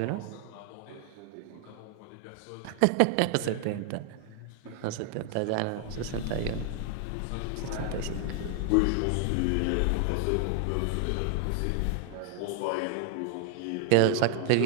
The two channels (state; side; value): different; both; correlation 0.00